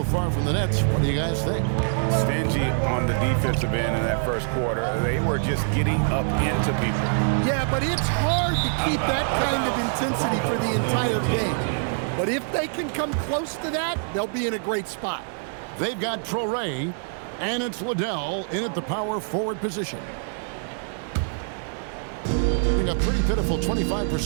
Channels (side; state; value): left; silent; digital silence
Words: far from the Nets, what do you guys think? Stingy on the defensive end in that first quarter. They were just getting up into people. Yeah, but it's hard to keep that kind of intensity for the entire game. But if they can come close to that, they'll be in a great spot. They've got Traore, and it's Liddell in at the power forward position. A pretty pitiful